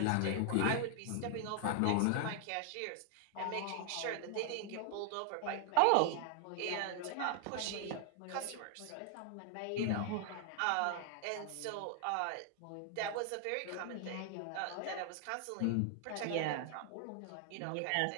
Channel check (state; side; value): different; both; correlation 0.00